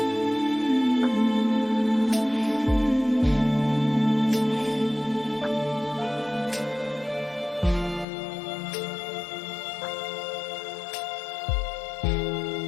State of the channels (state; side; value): drops out; right; at 8.1 s